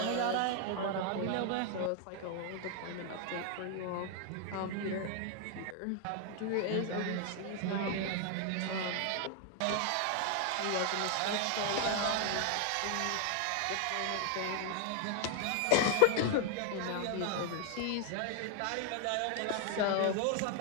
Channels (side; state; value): both; different; correlation 0.00